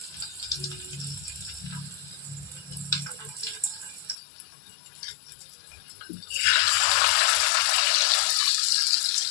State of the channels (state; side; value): drops out; right; at 4.2 s